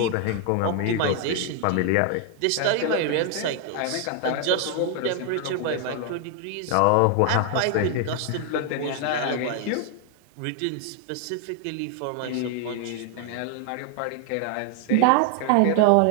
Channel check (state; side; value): different; both; correlation 0.00